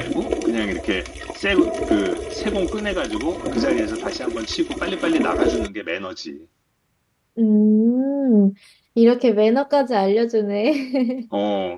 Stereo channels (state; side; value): identical; both; correlation 1.00